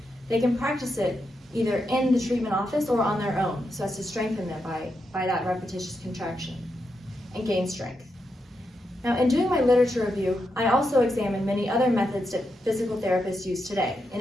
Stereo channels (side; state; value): both; normal; correlation 0.84